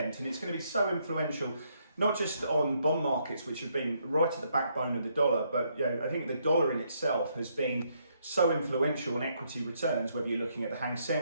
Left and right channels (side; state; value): both; inverted; correlation -0.73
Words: and it's going to be so influential, not just on bond markets, which have been right at the backbone of the dollar, but I think the dollar in itself has been so influential on equity returns, whether you're looking at the Hang